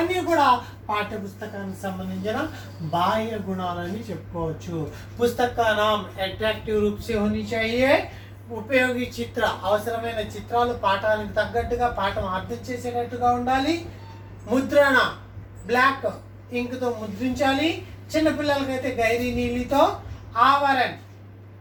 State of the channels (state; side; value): identical; both; correlation 1.00